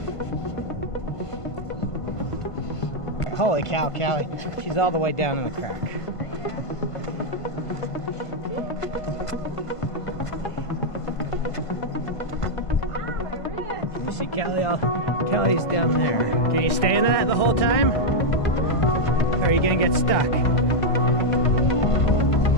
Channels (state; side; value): late; right; 1.5 ms